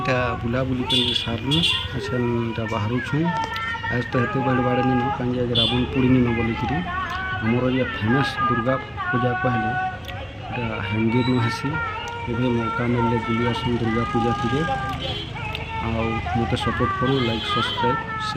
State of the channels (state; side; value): identical; both; correlation 1.00